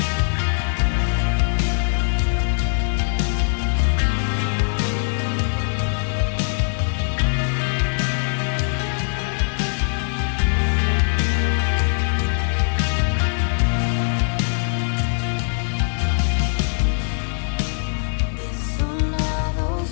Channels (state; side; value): silent; right; digital silence